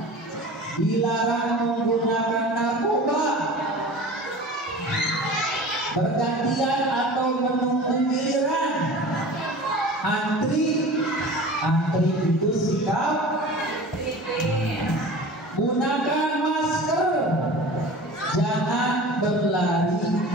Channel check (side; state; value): both; normal; correlation 0.38